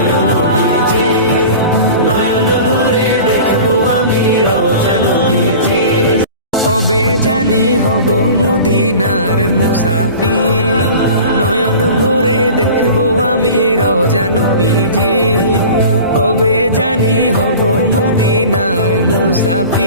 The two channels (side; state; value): both; inverted; correlation -0.39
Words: নবীজি। নয়ন ভরে দেখবো আমি রওজা নবীজি। কবে জানি হব মদিনার মুসাফির, নয়ন ভরে দেখবো আমি রওজা নবীজি। কবে জানি হব মদিনার